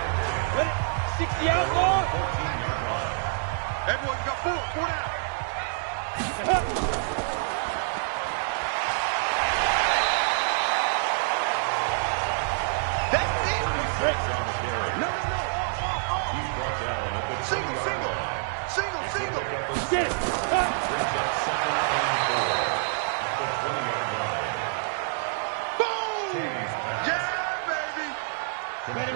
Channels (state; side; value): silent; left; digital silence